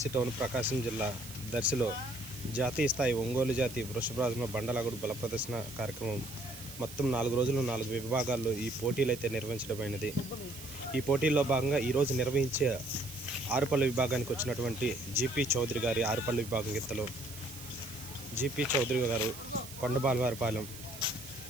టౌన్ ప్రకాశం జిల్లా దర్శిలో జాతీయ స్థాయి ఒంగోలు జాతి వృషభరాజుల బండలాగుడు బల ప్రదర్శన కార్యక్రమం మొత్తం 4 రోజులు 4 విభాగాల్లో ఈ పోటీలు అయితే నిర్వహించడమైనది. ఈ పోటీల్లో భాగంగా ఈరోజు నిర్వహించే ఆరుపల్లి విభాగానికి వచ్చినటువంటి జీపీ చౌదరి గారి ఆరుపల్లి విభాగం గిత్తలు జీపీ చౌదరి గారు కొండబాలవారిపాలెం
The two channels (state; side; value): noise; right; hiss, 14 dB below the sound